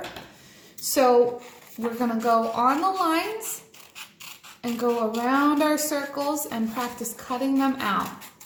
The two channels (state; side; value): identical; both; correlation 1.00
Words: So we're going to go on the lines and go around our circles and practice cutting them out.